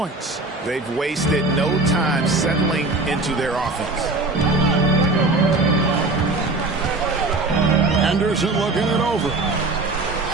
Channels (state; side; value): quieter; left; 3.1 dB